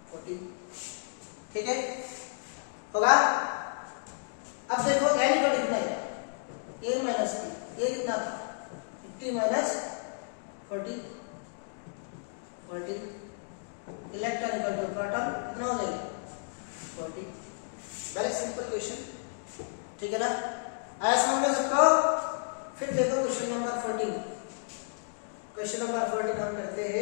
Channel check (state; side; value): silent; right; digital silence